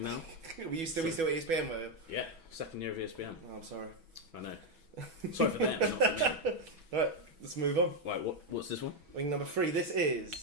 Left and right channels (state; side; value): late; left; 6.1 ms